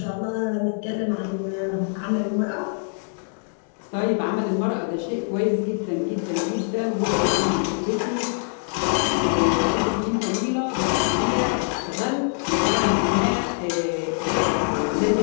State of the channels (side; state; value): right; silent; 63 dB below the other